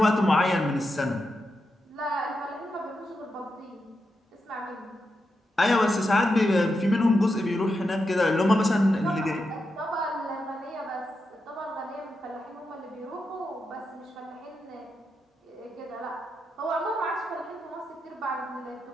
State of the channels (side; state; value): both; normal; correlation 0.86